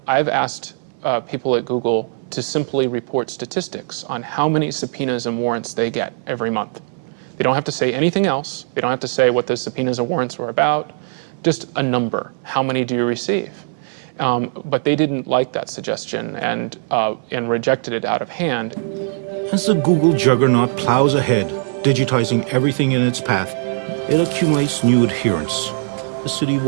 I've asked people at Google to simply report statistics on how many subpoenas and warrants they get every month. They don't have to say anything else. They don't have to say what the subpoenas and warrants were about. Just a number. How many do you receive? But they didn't like that suggestion and rejected it out of hand. As the Google juggernaut plows ahead, digitizing everything in its path, it accumulates new adherents. The city of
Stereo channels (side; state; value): left; silent; 61 dB below the other